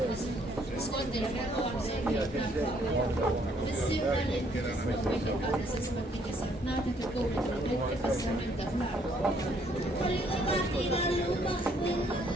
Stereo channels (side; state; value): both; normal; correlation 0.67